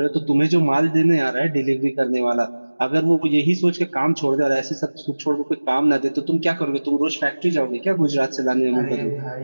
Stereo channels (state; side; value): inverted; both; correlation -1.00